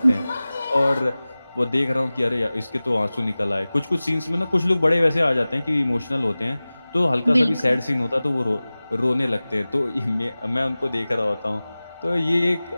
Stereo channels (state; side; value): inverted; both; correlation -0.98